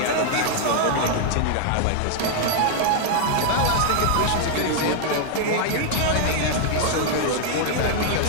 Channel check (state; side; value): different; both; correlation 0.00